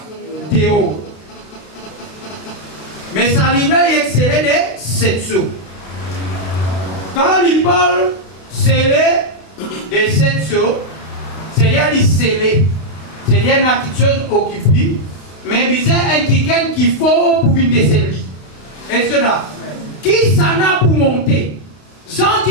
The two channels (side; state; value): right; late; 31 ms